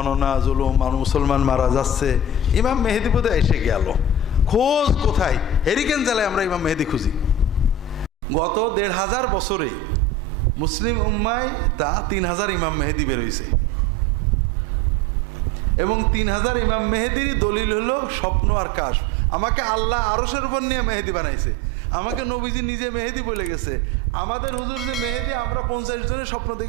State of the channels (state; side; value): normal; both; correlation 0.34